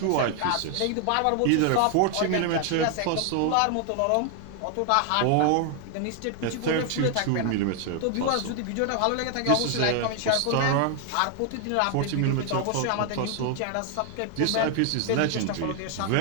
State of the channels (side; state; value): both; different; correlation 0.00